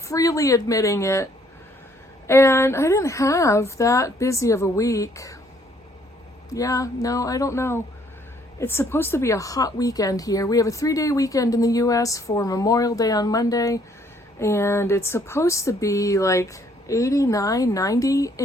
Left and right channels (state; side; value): normal; both; correlation 0.64